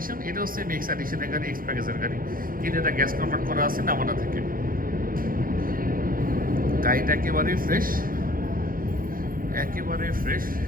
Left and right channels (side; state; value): left; late; 0.41 ms